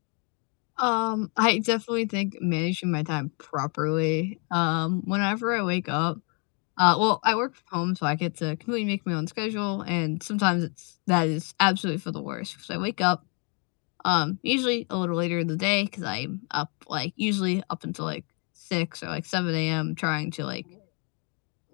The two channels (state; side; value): quieter; right; 35.8 dB